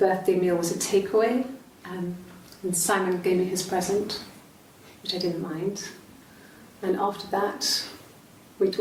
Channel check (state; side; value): identical; both; correlation 1.00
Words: meal was a takeaway, and Simon gave me his present, which I didn't mind. And after that, we